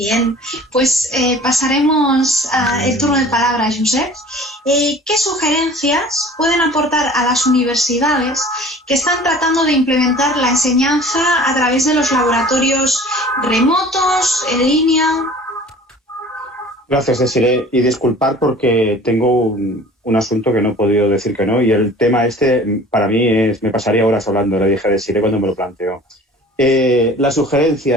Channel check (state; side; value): normal; both; correlation 0.46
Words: pues pasaremos al turno de palabra a Josep. ¿Qué sugerencias pueden aportar a las universidades que están tratando de implementar la enseñanza a través de los laboratorios remotos, en línea? Gracias, Desiree. Y disculpar porque tengo un asunto que no he podido decir que no, y el tema para mí me pasaría horas hablando, le dije a Desiree cuando me lo planteó. Las